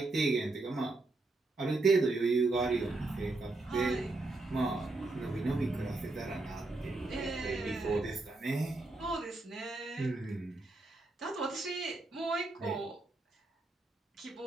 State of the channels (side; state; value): left; quieter; 3.1 dB